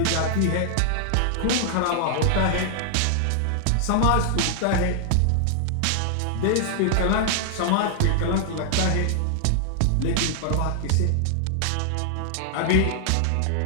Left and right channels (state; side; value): different; both; correlation 0.00